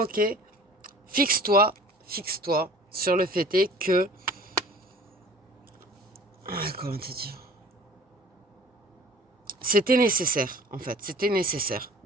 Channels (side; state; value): both; normal; correlation 0.46